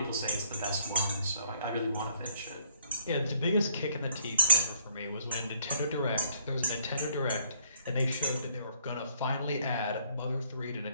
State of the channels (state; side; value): inverted; both; correlation -0.66